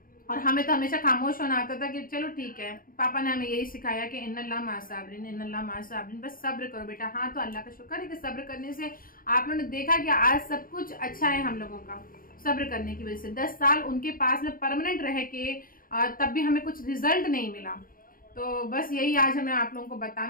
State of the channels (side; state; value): right; late; 0.41 ms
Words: और हमें तो हमेशा खामोश होना आता था कि चलो ठीक है, पापा ने हमें यही सिखाया कि इन्नल्लाह माअ साबिरीन, इन्नल्लाह माअ साबिरीन, बस सब्र करो बेटा। हाँ, तो अल्लाह का शुक्र है कि सब्र करने से आप लोगों ने देखा कि आज सब कुछ अच्छा है हम लोगों का, सब्र करने की वजह से। 10 साल उनके पास में परमानेंट रह के तब भी हमें कुछ रिजल्ट नहीं मिला। तो बस यही आज हमें आप लोगों को